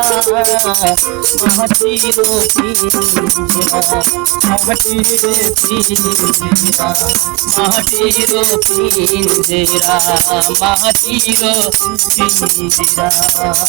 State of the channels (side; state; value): left; quieter; 25.6 dB